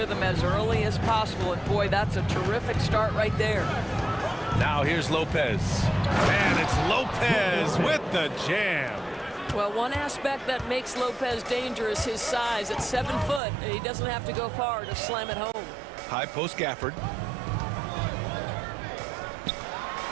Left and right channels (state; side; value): drops out; left; at 13.4 s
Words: as early as possible. And boy, that's a terrific start right there. Now here's Lopez. And it's Lopez with the jam. Well, one aspect that makes Lopez dangerous, his size. At 7 foot, he doesn't have to go far to slam it home. High post Gafford.